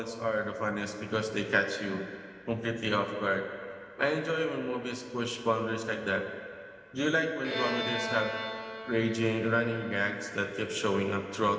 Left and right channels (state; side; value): identical; both; correlation 1.00